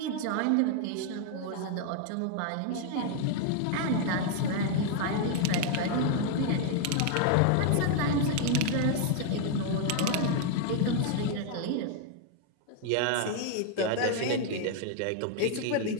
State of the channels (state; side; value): different; both; correlation 0.00